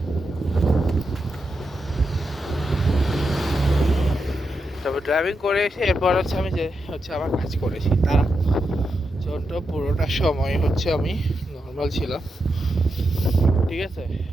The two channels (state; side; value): normal; both; correlation 0.86